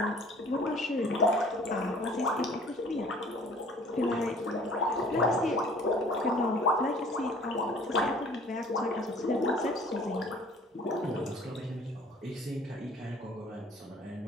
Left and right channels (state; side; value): normal; both; correlation 0.52